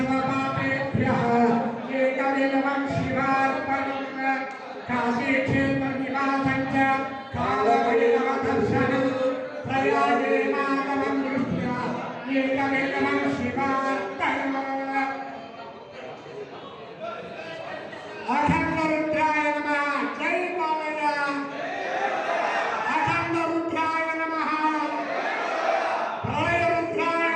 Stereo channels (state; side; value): identical; both; correlation 1.00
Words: ఏకబిల్వం శివార్పణం. కాశీక్షేత్ర నివాసం చ కాలభైరవ దర్శనం ప్రయాగే మాధవం దృష్ట్యా ఏకబిల్వం శివార్పణం. అఖండ రుద్రాయ నమః. జై బాలయ్య. అఖండ రుద్రాయ నమః. ప్రళయ రుద్రాయ